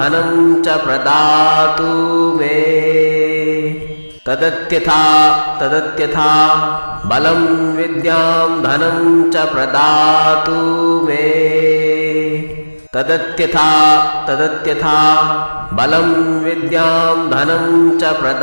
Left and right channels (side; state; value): both; inverted; correlation -1.00